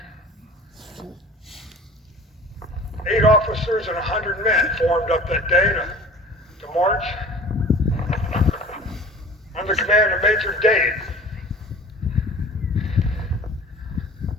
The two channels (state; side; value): normal; both; correlation 0.43